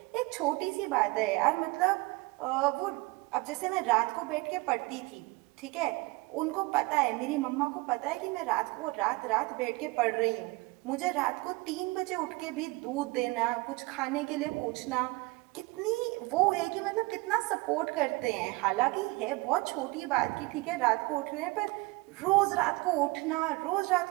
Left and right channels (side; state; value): left; quieter; 23.8 dB